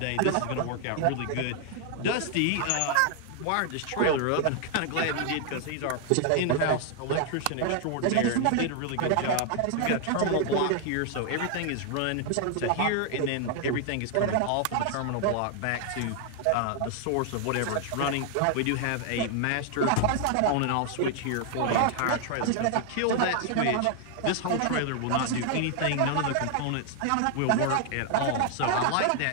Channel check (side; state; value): both; different; correlation 0.00